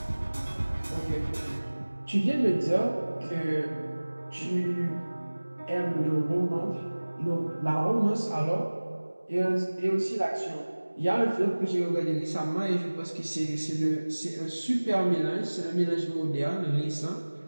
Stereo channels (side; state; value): both; inverted; correlation -1.00